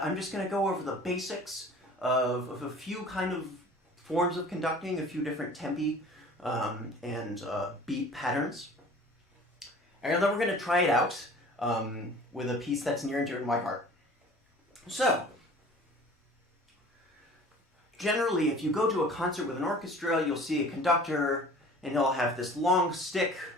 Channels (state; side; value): normal; both; correlation 0.45